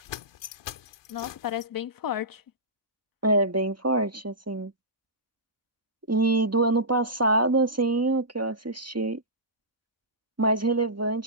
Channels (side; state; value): both; normal; correlation -0.18